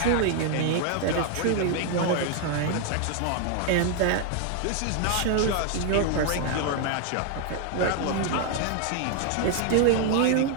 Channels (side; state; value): both; different; correlation 0.00